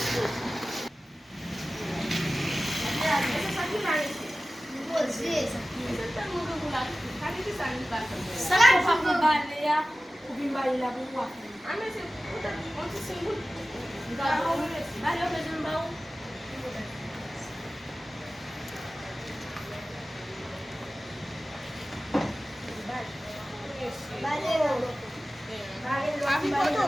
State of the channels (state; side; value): normal; both; correlation 0.95